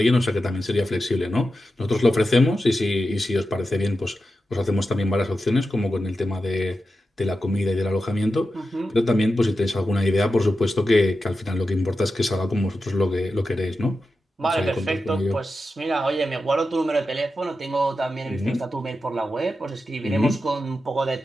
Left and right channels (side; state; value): both; normal; correlation 0.91